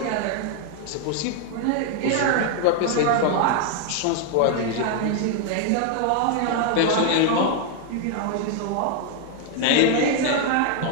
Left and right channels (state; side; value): different; both; correlation 0.00